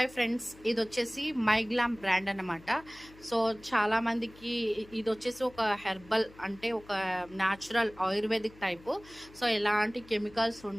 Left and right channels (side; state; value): left; noise; hum, 22 dB below the sound